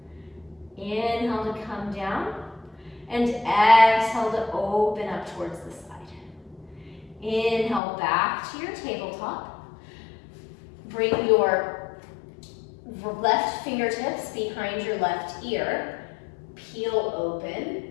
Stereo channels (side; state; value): right; drops out; at 7.8 s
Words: Inhale to come down. And exhale to open up towards the side. Inhale, back to your tabletop. Bring your left fingertips behind your left ear. Peel open.